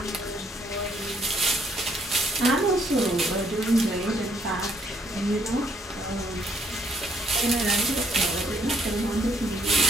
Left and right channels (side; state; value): both; normal; correlation 0.69